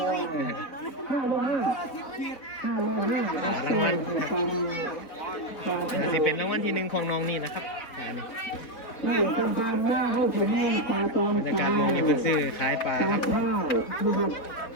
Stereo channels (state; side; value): late; right; 4.2 ms